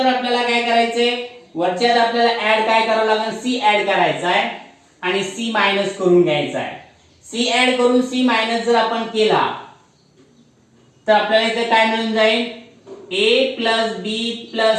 आपल्याला काय करायचंय वरच्यात आपल्याला ऍड काय करावं लागेल c ऍड करायचा आहे आणि c मायनस करून घ्यायचा आहे. c ऍड करून c मायनस जर आपण केला तर आपल्याला इथे काय मिळून जाईल a plus b plus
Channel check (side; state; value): both; identical; correlation 1.00